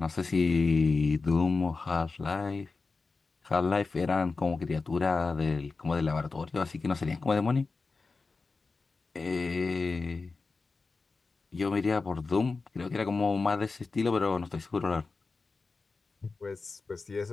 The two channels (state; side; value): quieter; right; 4.1 dB